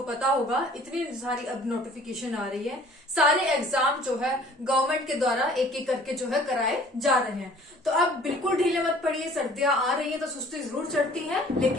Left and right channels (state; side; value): normal; both; correlation 0.52